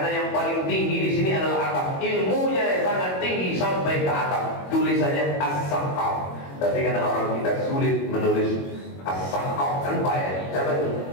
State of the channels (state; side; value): late; right; 21 ms